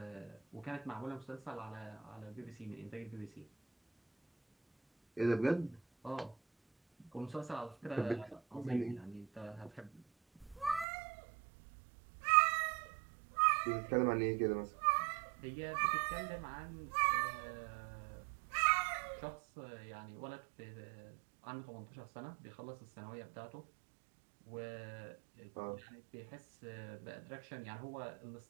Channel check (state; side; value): drops out; left; at 10.9 s